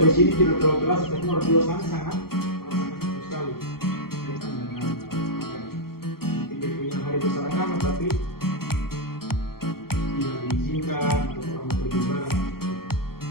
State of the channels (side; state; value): right; late; 0.94 ms